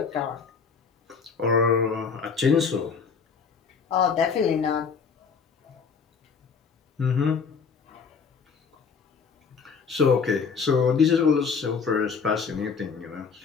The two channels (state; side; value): quieter; right; 5.7 dB